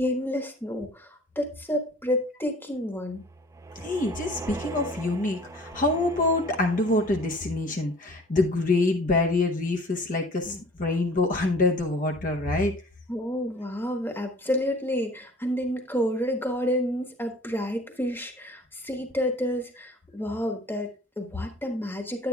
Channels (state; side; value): normal; both; correlation 0.49